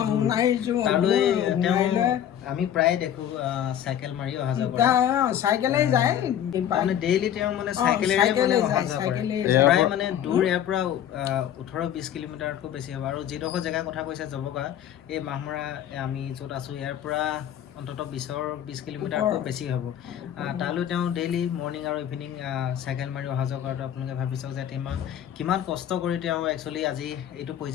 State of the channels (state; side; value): quieter; right; 10.3 dB